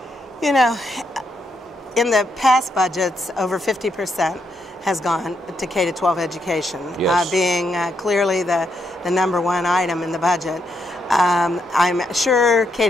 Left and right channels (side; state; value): both; normal; correlation 0.79